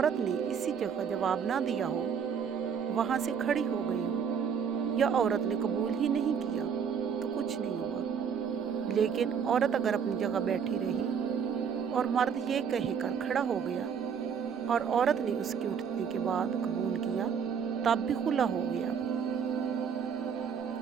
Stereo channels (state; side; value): quieter; left; 7.1 dB